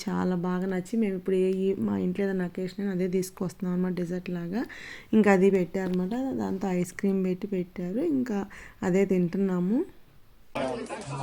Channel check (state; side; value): identical; both; correlation 1.00